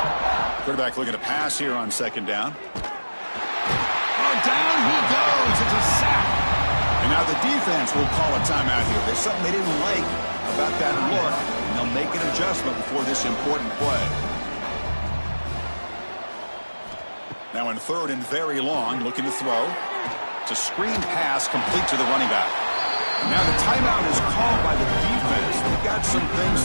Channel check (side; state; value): both; inverted; correlation -1.00